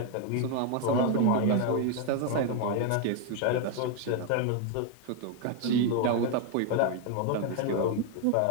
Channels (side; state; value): both; different; correlation 0.01